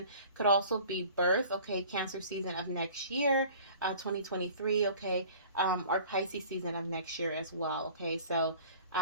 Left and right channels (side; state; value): both; inverted; correlation -0.46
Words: Could also be birth, okay, Cancer season of next year, 2023, okay, or Pisces season of next year as well, okay. So